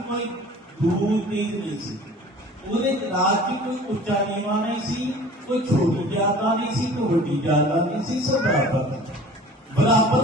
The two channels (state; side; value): normal; both; correlation 0.45